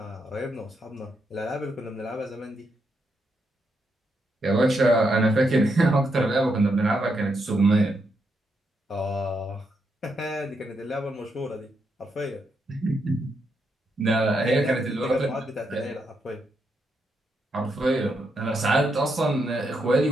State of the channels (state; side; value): normal; both; correlation 0.80